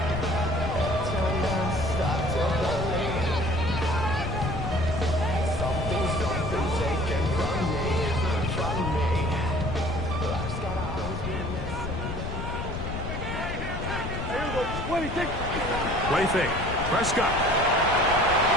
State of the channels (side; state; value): left; noise; rumble, 6 dB below the sound